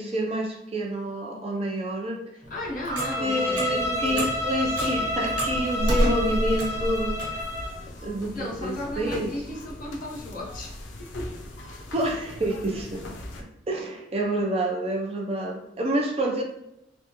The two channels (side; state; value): both; normal; correlation 0.52